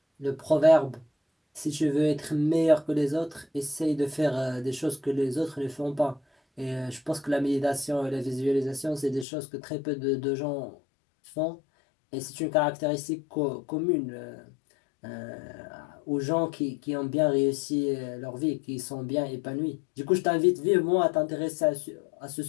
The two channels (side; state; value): right; drops out; at 9.2 s